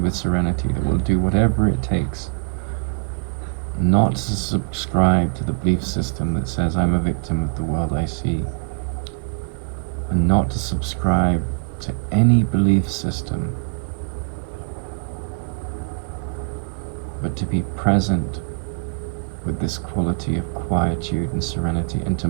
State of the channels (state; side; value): quieter; left; 37.4 dB